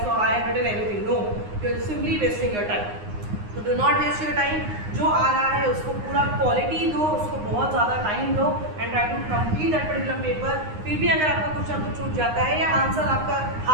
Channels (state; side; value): late; left; 9.7 ms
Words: so I have written everything. No, you're simply wasting your time. तो do not waste your time, जो आ रहा है उसको पूरा क्वालिटी दो, उसको बहुत ज़्यादा टाइम दो and try to complete that particular paper. फिर भी अगर आपका कुछ ना कुछ छूट जाता है या आंसर आपका